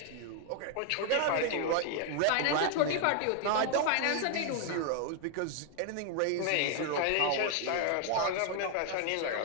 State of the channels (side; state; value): both; different; correlation 0.00